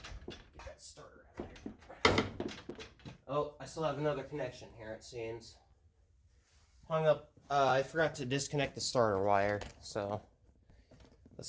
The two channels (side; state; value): both; identical; correlation 1.00